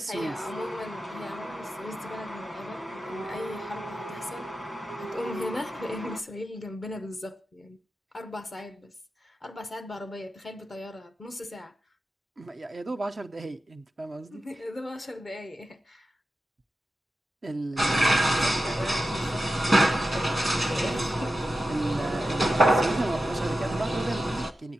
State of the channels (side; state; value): both; normal; correlation 0.92